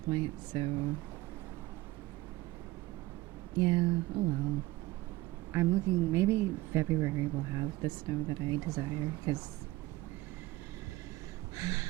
point. So yeah, oh well. I'm looking. Maybe February will have the snow that I desire because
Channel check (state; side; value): quieter; left; 18.8 dB